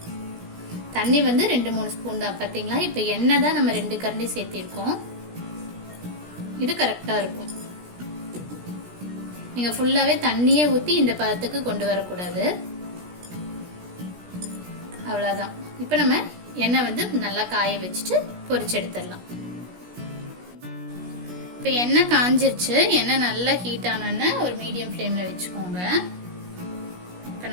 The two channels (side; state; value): left; late; 17 ms